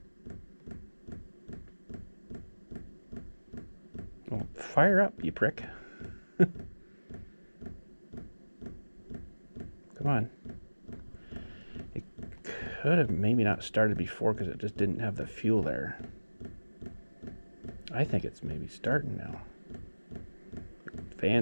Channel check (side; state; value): both; inverted; correlation -1.00